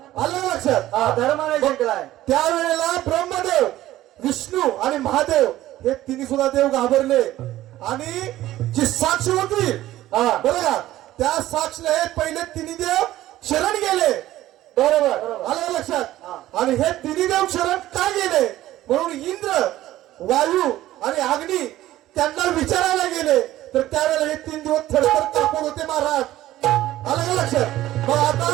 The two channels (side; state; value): left; quieter; 14.8 dB